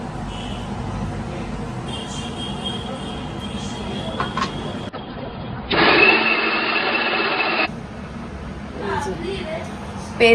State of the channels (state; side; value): identical; both; correlation 1.00